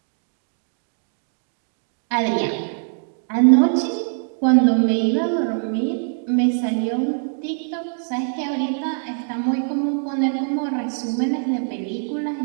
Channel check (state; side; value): silent; left; 63 dB below the other